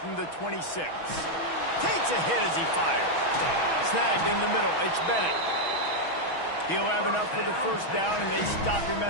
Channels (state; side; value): late; right; 6.2 ms